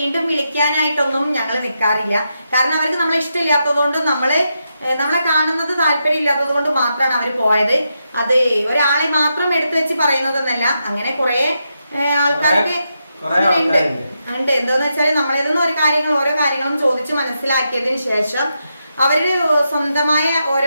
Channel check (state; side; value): inverted; both; correlation -0.84